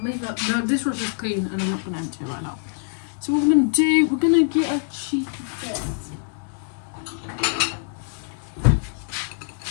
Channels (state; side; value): silent; right; 60 dB below the other